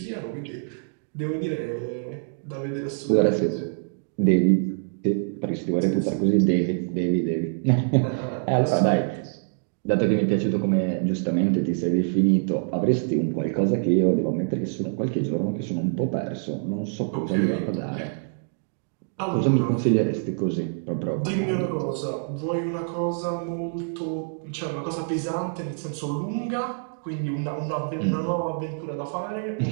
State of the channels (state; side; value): silent; left; digital silence